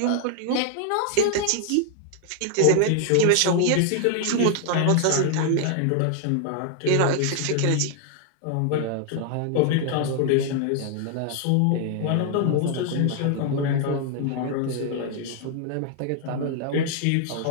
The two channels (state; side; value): different; both; correlation 0.00